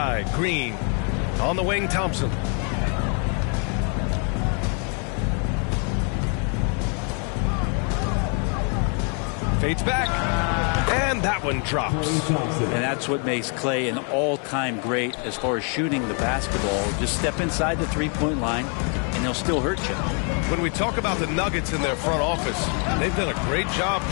Green. On the wing, Thompson. Fades back. And that one drops. And that's what makes Clay an all-time great as far as shooting the basketball. Just step inside the three-point line, and they'll still hurt you. When we talk about the Nuggets in their front office, they've done a great job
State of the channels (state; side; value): quieter; right; 39.4 dB